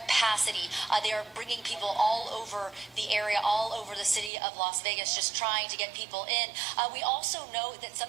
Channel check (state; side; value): drops out; left; at 4.3 s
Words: They are bringing people all over the area, all over the city of Las Vegas, just trying to get people in. We also know that